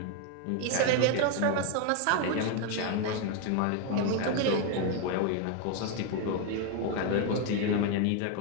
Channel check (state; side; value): different; both; correlation 0.01